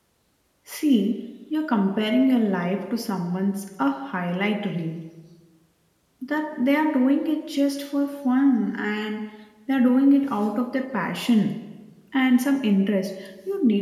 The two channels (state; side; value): identical; both; correlation 1.00